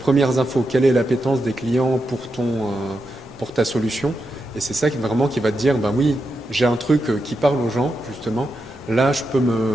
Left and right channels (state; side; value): normal; both; correlation 0.86